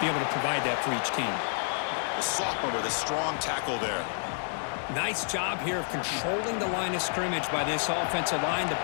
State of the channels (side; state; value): right; silent; digital silence